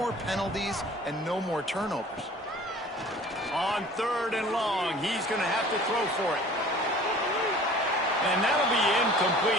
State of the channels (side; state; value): both; normal; correlation 0.47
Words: penalties and no more turnovers. On third and long, he's going to have to throw for it. And that'll be